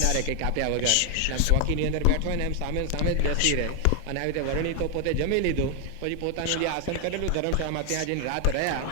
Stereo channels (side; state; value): both; different; correlation 0.01